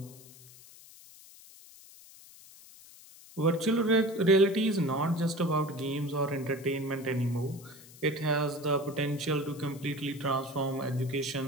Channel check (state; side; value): noise; left; hiss, 20 dB below the sound